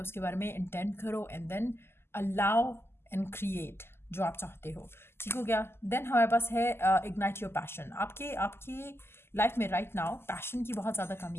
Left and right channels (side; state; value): right; late; 0.12 ms